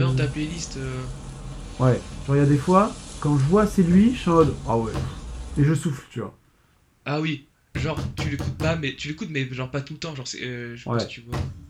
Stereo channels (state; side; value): identical; both; correlation 1.00